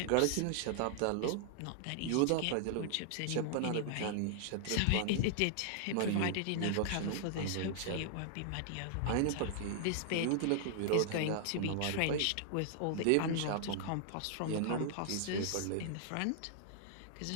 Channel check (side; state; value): both; different; correlation -0.01